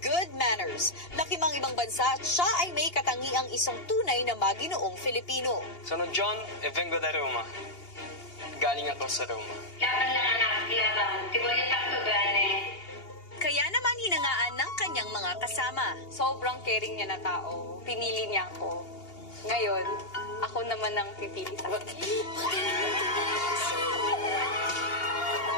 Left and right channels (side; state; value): right; late; 2.8 ms